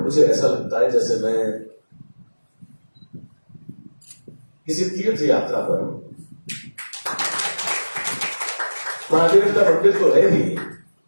मुझे ऐसा लगता है जैसे मैं किसी तीर्थ यात्रा पर हूं। महादेव का मंदिर तो है ही,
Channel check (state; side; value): inverted; both; correlation -1.00